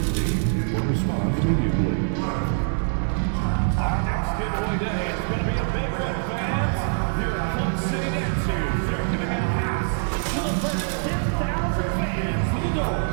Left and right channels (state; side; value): silent; left; 62 dB below the other